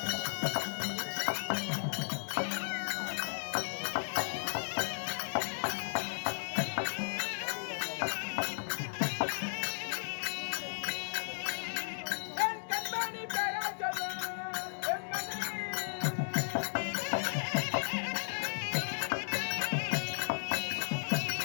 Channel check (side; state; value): right; silent; digital silence